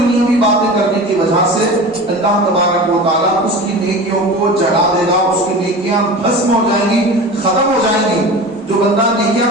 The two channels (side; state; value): both; normal; correlation 0.33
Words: باتیں کرنے کی وجہ سے اللہ تبارک و تعالیٰ اس کی نیکیوں کو جڑا دے گا, اس کی نیکیاں بھسم ہو جائیں گی, ختم ہو جائیں گی. جو بندہ نیکیاں